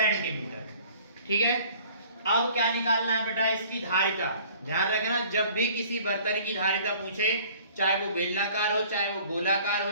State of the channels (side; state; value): both; inverted; correlation -0.51